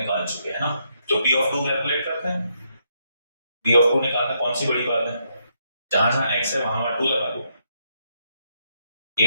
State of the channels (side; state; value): both; inverted; correlation -0.77